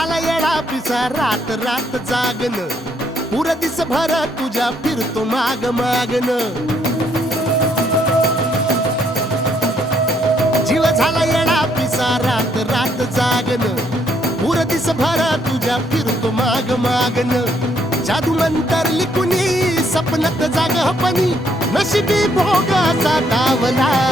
येडा पिसा रात रात जागन पुर दिस भर तुझ्या फिरतो माग मागन जीव झाला येडा पिसा रात रात जागन पुर दिस भर तुझ्या फिरतो माग मागन जादू मंतर लिकुनी सपनात जाग हपनी नशिबी भोगाचा डावला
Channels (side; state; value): both; normal; correlation 0.70